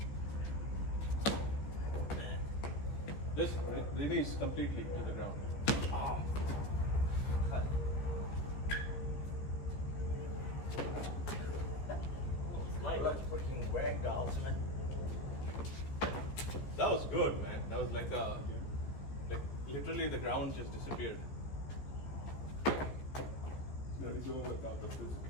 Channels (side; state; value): right; late; 15 ms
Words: This release completely to the ground. Oh. Light. Like freaking rag dolls, man. That was good, man. That was like literally the ground just disappeared. No, he's doing without the